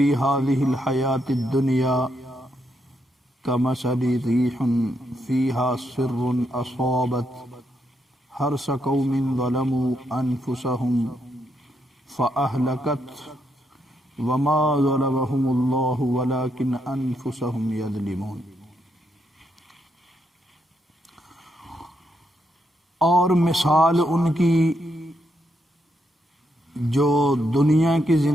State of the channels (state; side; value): normal; both; correlation 0.79